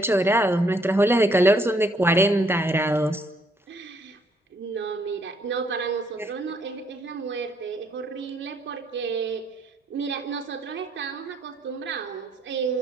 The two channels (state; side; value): normal; both; correlation 0.69